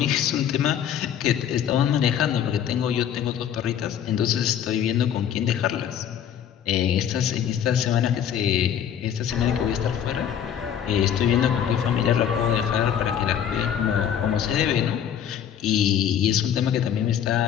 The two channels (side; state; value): right; quieter; 9.2 dB